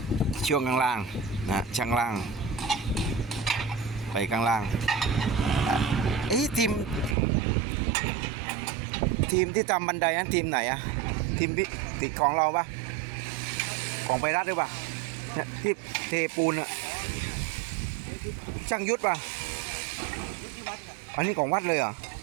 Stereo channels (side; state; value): left; drops out; at 7.2 s